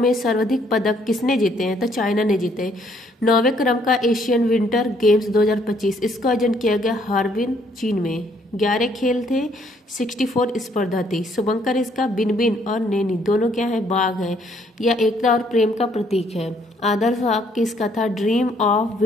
सर्वाधिक पदक किसने जीते हैं? तो चाइना ने जीते। 9वें क्रम का एशियन विंटर गेम्स 2025, इसका आयोजन किया गया हार्बिन चीन में। 11 खेल थे, 64 स्पर्धा थी। शुभंकर इसका बिनबिन और नैनी दोनों क्या है? बाघ है। यह एकता और प्रेम का प्रतीक है। आदर्श वाक्य इसका था dream of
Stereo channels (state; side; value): normal; both; correlation 0.66